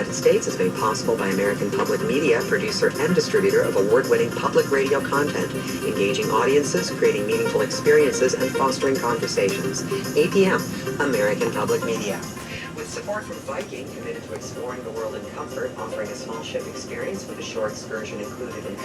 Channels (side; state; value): both; identical; correlation 1.00